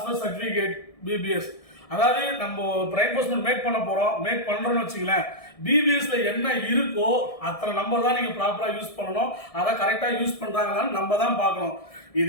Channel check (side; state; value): right; late; 1.7 ms